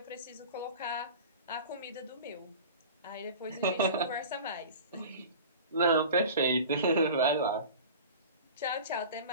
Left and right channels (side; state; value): both; inverted; correlation -0.37